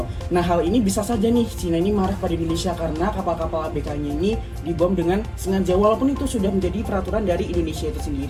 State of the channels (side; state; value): both; identical; correlation 1.00